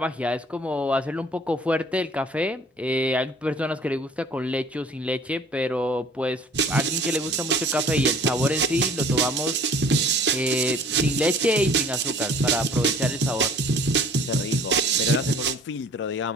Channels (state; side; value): normal; both; correlation 0.51